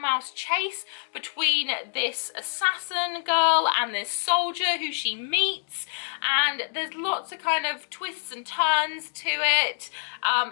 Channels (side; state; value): right; silent; digital silence